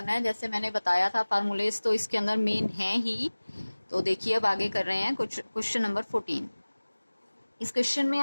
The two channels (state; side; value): inverted; both; correlation -1.00